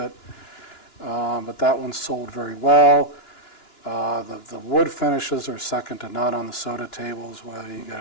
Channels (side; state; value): right; late; 2.9 ms